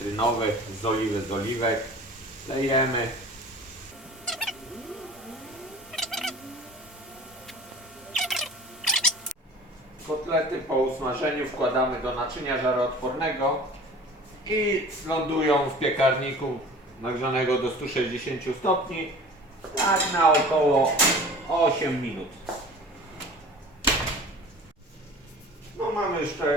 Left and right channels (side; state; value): both; normal; correlation 0.42